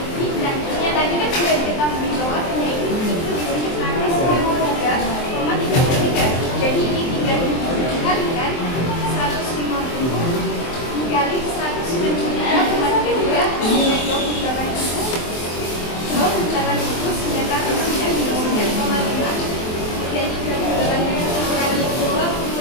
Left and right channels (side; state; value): right; late; 23 ms